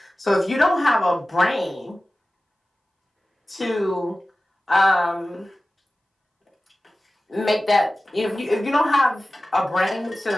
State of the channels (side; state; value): both; normal; correlation 0.96